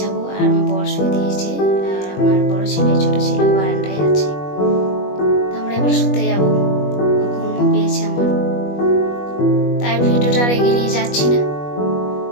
যাবো, আর আমার বর শুয়ে দিয়েছে, আর আমার বড় ছেলে ছোট ছেলে বারান্দায় আছে। আমরা এবার শুতে যাবো, ঘুমও পেয়েছে আমার। তাই ভিডিওটা আর এগিয়ে নিয়ে যাচ্ছি না,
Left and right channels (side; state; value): right; late; 21 ms